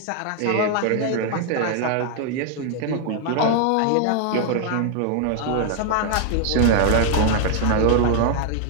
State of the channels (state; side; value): different; both; correlation 0.00